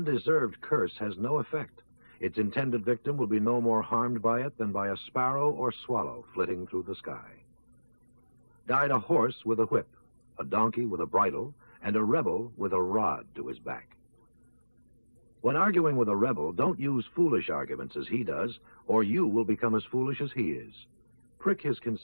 curse has no effect. Its intended victim will be no more harmed by it than by a sparrow or swallow flitting through the sky. Guide a horse with a whip, a donkey with a bridle, and a rebel with a rod to his back. When arguing with a rebel, don't use foolish arguments as he does, or you will become as foolish as he is. Prick his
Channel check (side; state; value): both; inverted; correlation -1.00